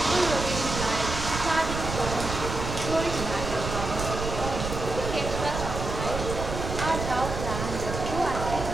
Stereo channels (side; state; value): right; noise; rumble, 5 dB below the sound